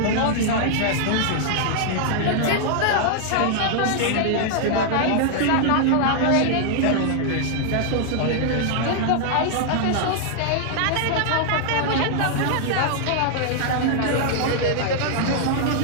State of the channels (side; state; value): both; different; correlation -0.01